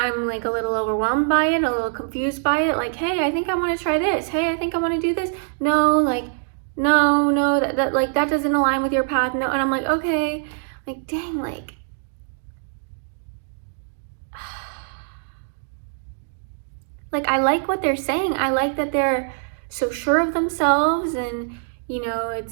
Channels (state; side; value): silent; left; digital silence